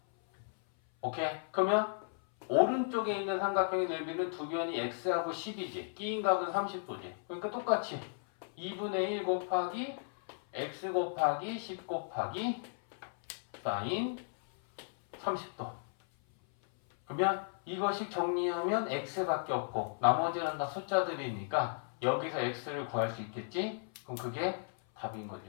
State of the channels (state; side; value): silent; right; 54 dB below the other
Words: 오케이? 그러면 오른쪽에 있는 삼각형의 넓이는 두 변이 x하고 10이지. 끼인각은 30도지. 그러니까 똑같이 2분의 1 곱하기 x 곱하기 10 곱하기 사인 30도. 그러면 이것이 정리하면 x밖에 없고 나머지는 다 숫자들이니까 여기서 x를 구할 수 있겠지? 그럼 그게 답인 거죠.